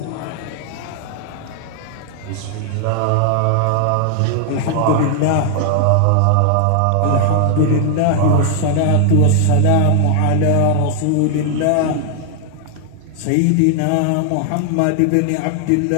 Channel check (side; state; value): both; different; correlation 0.00